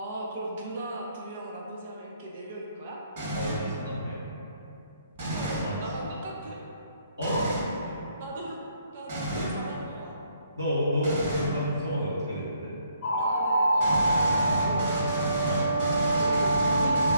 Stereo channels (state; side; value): inverted; both; correlation -0.70